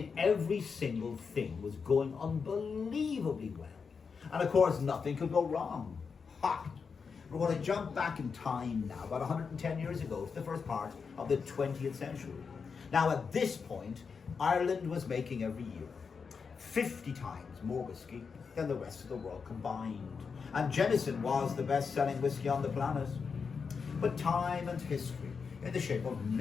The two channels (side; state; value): right; quieter; 5.6 dB